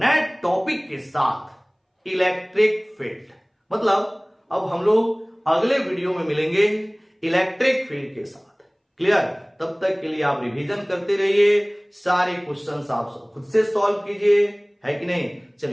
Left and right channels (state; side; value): identical; both; correlation 1.00